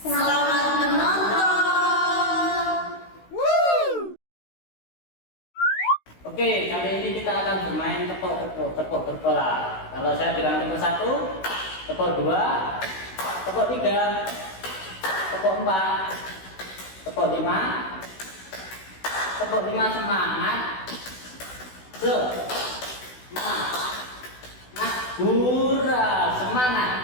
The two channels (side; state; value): right; late; 16 ms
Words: menonton. Oke, kali ini kita akan bermain tepuk bola. Kalau saya bilang tepuk 1, tepuk 2, tepuk 3, tepuk 4, tepuk 5, tepuk 5 semangat. Hura, semangat.